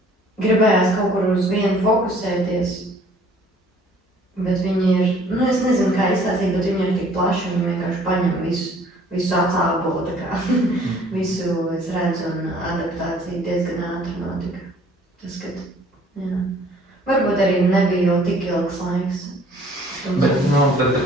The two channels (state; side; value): normal; both; correlation 0.56